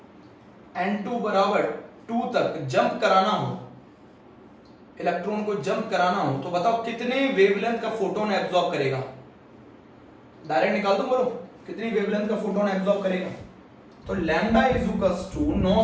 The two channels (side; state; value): both; identical; correlation 1.00